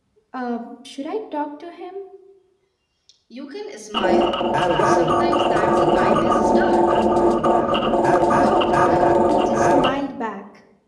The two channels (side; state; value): both; identical; correlation 1.00